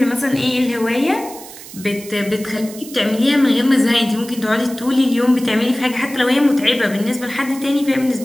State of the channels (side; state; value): right; noise; hiss, 16 dB below the sound